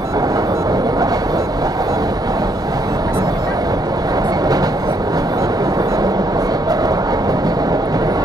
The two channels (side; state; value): both; normal; correlation 0.72